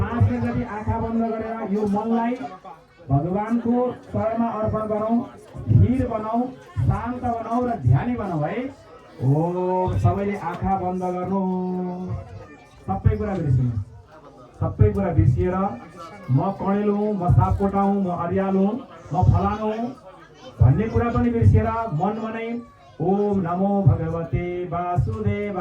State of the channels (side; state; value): both; identical; correlation 1.00